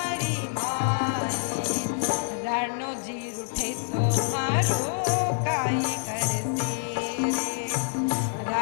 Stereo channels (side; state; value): right; silent; digital silence